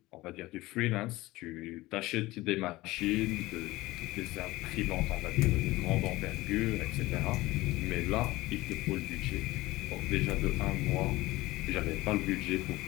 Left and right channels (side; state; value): right; quieter; 19.1 dB